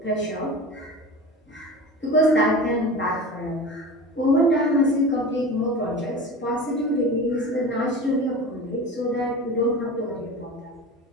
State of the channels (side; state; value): both; normal; correlation 0.33